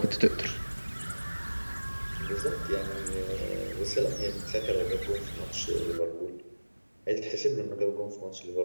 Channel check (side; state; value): both; inverted; correlation -1.00